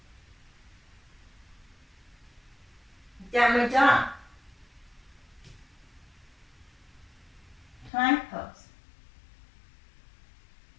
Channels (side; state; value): right; drops out; at 7.9 s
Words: Downward dog. Plank pose.